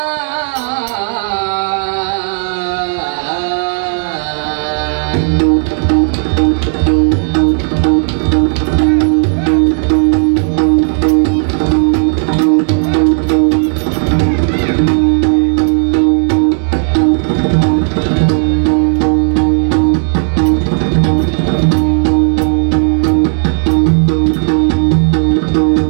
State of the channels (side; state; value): left; silent; 61 dB below the other